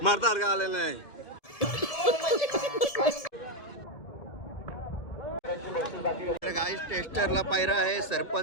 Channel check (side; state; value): right; late; 1.7 ms